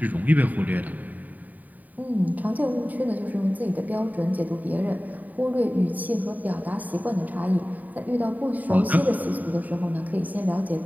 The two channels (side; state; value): left; late; 0.079 ms